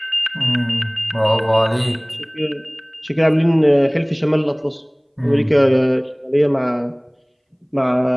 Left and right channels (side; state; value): both; identical; correlation 1.00